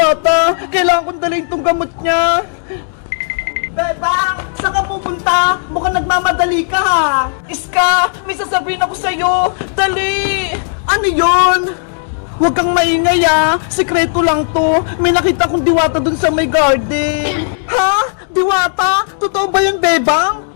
Kailangan kong dalhin tong gamot niya. Bebang! Saan ka pupunta? Mukhang nagmamadali ka ha. Iska! May sasabihin ako sa'yo. Dali! Ano yon? Huwag kang maingay ah. Sekreto lang to. May nakita kong diwata dun sa may garden. Ha? Diwata? Totoo ba yun, Bebang?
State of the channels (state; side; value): silent; right; digital silence